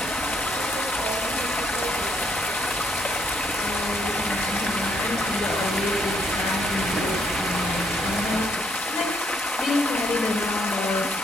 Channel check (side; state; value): both; normal; correlation 0.71